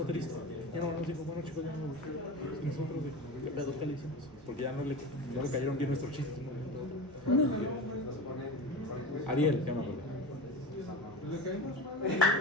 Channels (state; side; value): normal; both; correlation 0.28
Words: triste. Ya no, nos dijo, bueno chicos, ya no. Y nosotros, ¿qué pedo que le hicimos? Porque ya no le cayeron bien nuestros chistes. ¿No? Ariel, ya me acuerdo. ¿Le caímos? ¿Por